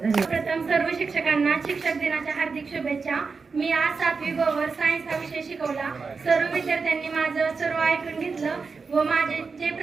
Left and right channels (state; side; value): quieter; left; 4.8 dB